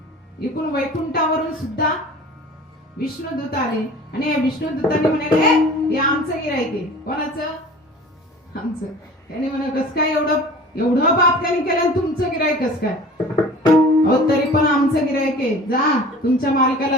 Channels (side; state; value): both; normal; correlation 0.43